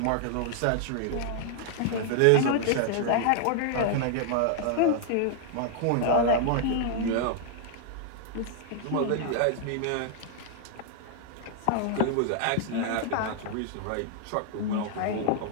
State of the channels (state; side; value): different; both; correlation 0.00